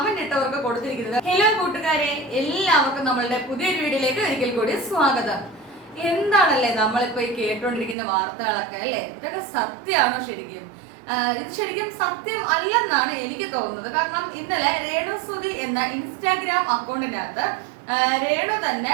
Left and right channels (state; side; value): drops out; left; at 8.0 s